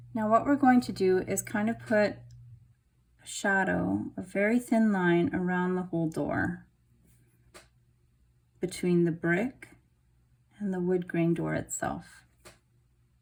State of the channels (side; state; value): both; identical; correlation 1.00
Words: Now what we're going to do is kind of put a shadow, a very thin line around the whole door between the brick and the wood grain door itself.